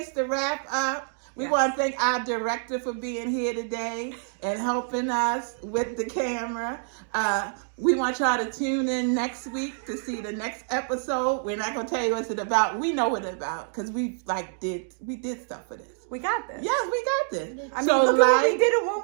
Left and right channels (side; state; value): left; silent; digital silence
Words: to wrap up. We want to thank our director for being here today and helping us with the camera. We want y'all to tune in next week to see the next episode. We're not going to tell you what it's about. We know what it's about because we did stuff for this. We got this. Yes, we got this. I mean, look at what we did in 1